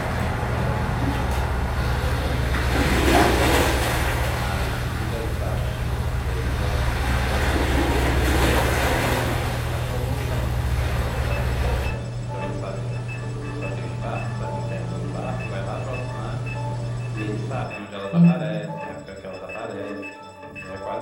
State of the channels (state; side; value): identical; both; correlation 1.00